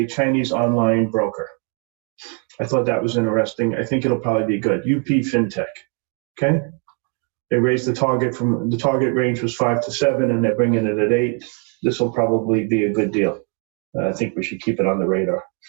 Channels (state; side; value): quieter; left; 34.7 dB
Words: Chinese online broker. I thought that was interesting. I think it'll probably be good. UP FinTech. Okay. They raised the target range was 5 to 7, and they're bringing it at 8. This will probably be a good deal. I think we should keep it on the radar.